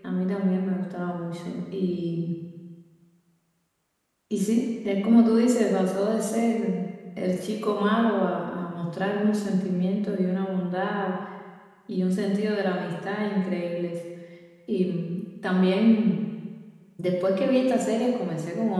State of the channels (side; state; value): both; identical; correlation 1.00